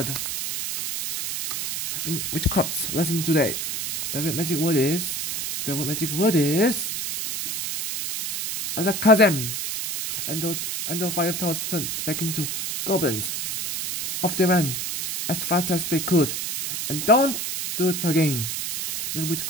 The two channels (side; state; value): right; noise; hiss, 2 dB below the sound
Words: In witchcraft's lesson today, the real magic word is Alakazam. And those 5 toads turned back into goblins. Off they ran as fast as they could, and don't do it again. Little Witch